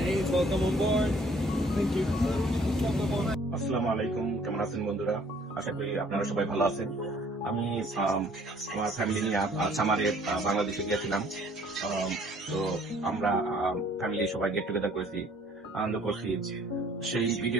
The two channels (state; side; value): normal; both; correlation 0.58